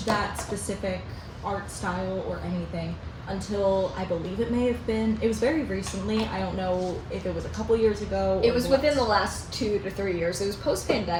that specific art style or anything until I believe it was very recently. I don't know if it was a couple years ago. It was within the last 2 to 3 years. It was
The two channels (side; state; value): both; identical; correlation 1.00